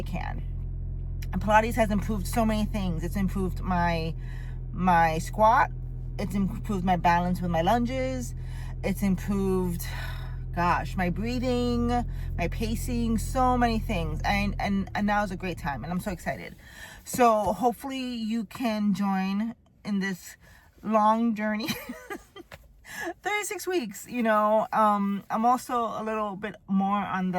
can. And Pilates has improved so many things. It's improved my squat. It's improved my balance with my lunges. It's improved, my breathing, my pacing, so many things. And now is a great time, and I'm so excited. So hopefully you can join in this long journey. 36 weeks, I'm also a little bit more on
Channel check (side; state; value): both; identical; correlation 1.00